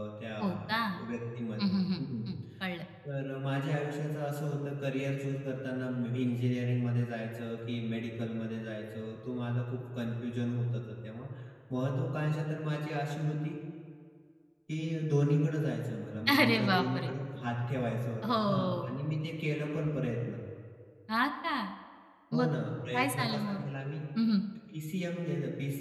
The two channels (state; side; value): identical; both; correlation 1.00